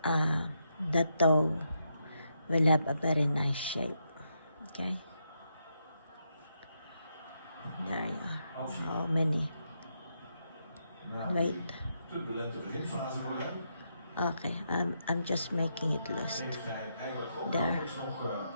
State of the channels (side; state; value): both; inverted; correlation -0.81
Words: the toe will have a very nice shape, okay? There you are. How many? Wait. Okay, I'm just making it loose. There.